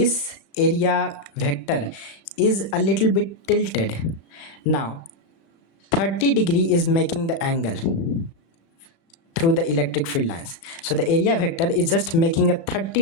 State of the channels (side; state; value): right; late; 36 ms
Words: area vector is a little bit tilted. Now 30 degree is making the angle through the electric field lines. So the area vector is just making a